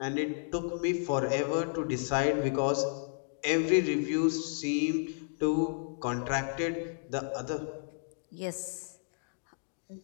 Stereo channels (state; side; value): silent; right; digital silence